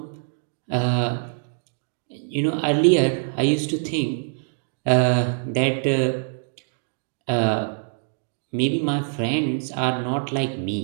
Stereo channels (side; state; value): left; silent; digital silence